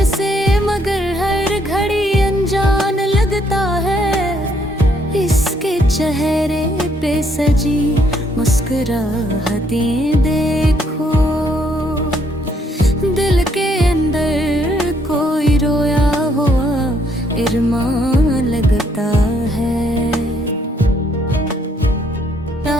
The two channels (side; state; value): both; normal; correlation 0.69